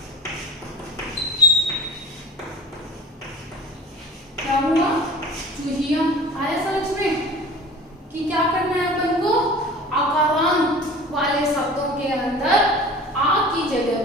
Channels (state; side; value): normal; both; correlation 0.41